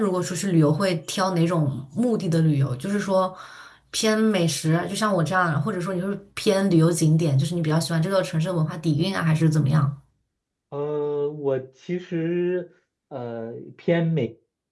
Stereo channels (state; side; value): identical; both; correlation 1.00